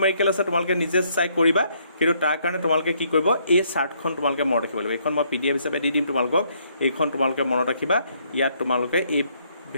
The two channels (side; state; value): both; inverted; correlation -0.70